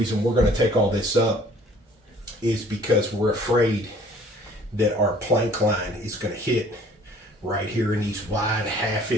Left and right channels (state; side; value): normal; both; correlation 0.54